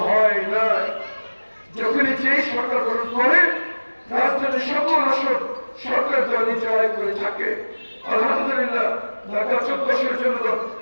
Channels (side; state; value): both; inverted; correlation -1.00